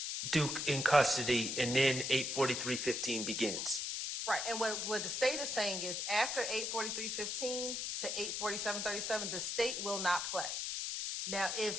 Duke in custody, and then 843:15 begins. right, and what the state is saying is after 843:15 to 847:37, the state will not play. Now,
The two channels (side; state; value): left; noise; hiss, 2 dB below the sound